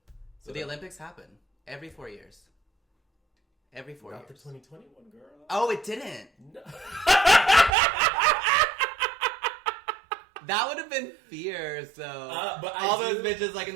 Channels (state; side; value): drops out; left; at 7.7 s